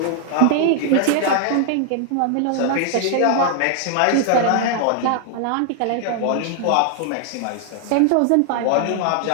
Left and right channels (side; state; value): both; different; correlation 0.00